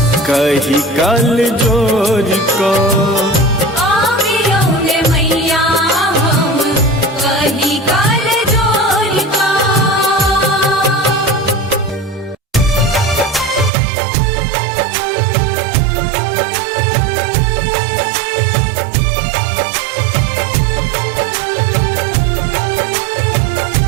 कही कल जोर का,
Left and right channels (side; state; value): left; drops out; at 13.7 s